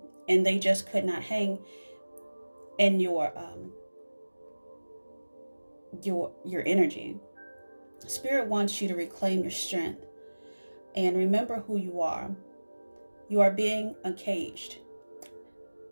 and they just could not hang in your energy. Spirit wants you to reclaim your strength and remember who you are. You are being uncaged.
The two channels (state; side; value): inverted; both; correlation -1.00